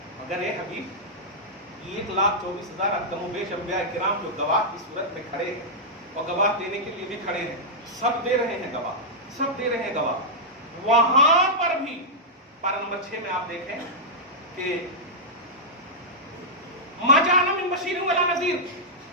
مگر اے حبیب 1,24,000 کم و بیش انبیاء کرام جو گواہ کی صورت میں کھڑے ہیں اور گواہ دینے کے لیے بھی کھڑے ہیں، سب دے رہے ہیں گواہ، سب دے رہے ہیں گواہ. وہاں پر بھی پارہ نمبر 6 میں آپ دیکھیں کہ ما جاءنا من بشیر ولا نذیر،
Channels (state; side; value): normal; both; correlation -0.09